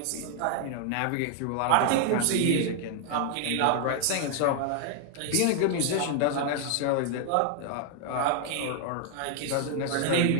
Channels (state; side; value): different; both; correlation 0.00